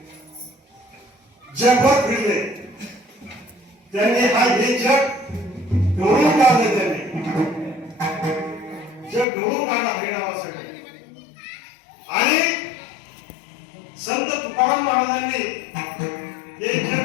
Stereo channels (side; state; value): right; drops out; at 9.2 s